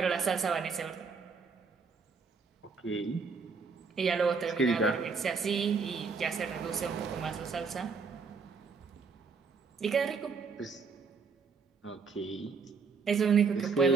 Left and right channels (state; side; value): quieter; left; 5.1 dB